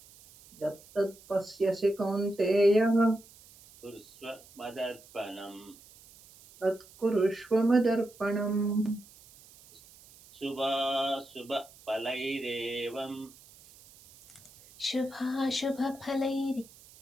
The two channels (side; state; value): right; noise; hiss, 23 dB below the sound